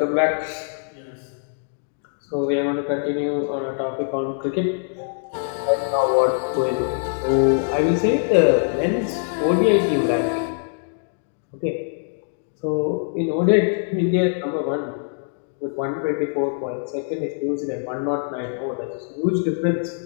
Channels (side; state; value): right; silent; digital silence